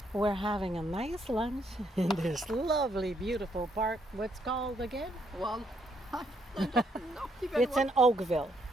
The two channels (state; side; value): normal; both; correlation 0.73